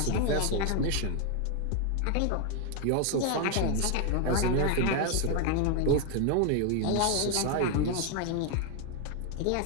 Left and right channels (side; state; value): both; different; correlation 0.01